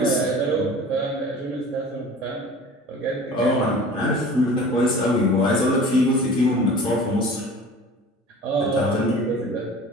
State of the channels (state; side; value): normal; both; correlation 0.41